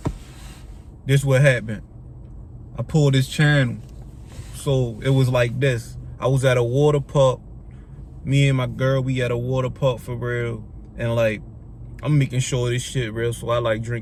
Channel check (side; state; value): both; identical; correlation 1.00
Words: this what happened. I pulled this channel. So it was like this. I was at a water park. Me and my girl, we at a water park for real. And like, I'm making sure this shit real. So I like